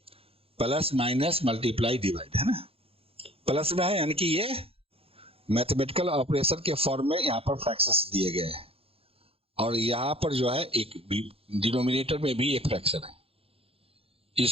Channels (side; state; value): left; late; 0.28 ms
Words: प्लस माइनस मल्टीप्लाई डिवाइड, है ना। प्लस में है यानी कि ये मैथमेटिकल ऑपरेशन के फॉर्म में यहाँ पर फ्रैक्शंस दिए गए हैं, और यहाँ पर जो है एक डिनोमिनेटर में भी एक फ्रैक्शन है।